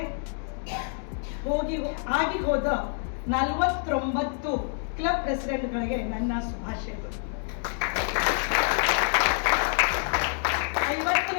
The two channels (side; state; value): right; silent; 60 dB below the other